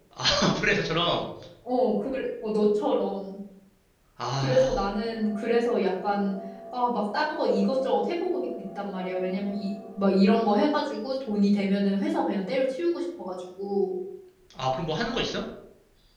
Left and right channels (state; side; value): identical; both; correlation 1.00